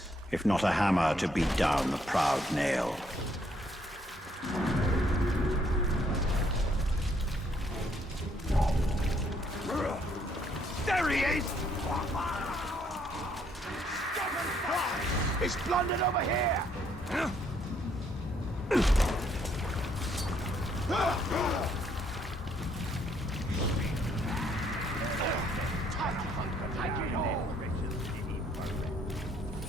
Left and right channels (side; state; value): both; normal; correlation 0.69